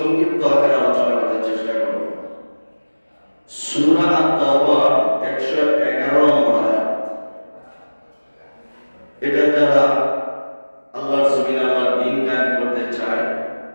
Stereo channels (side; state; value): both; inverted; correlation -1.00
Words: আকারে আলোচনা করার চেষ্টা করব। সূরা আত-তাওবার 111 নম্বর আয়াত। এটা যারা আল্লাহর জমিনে আল্লাহর দ্বীন কায়েম করতে চায়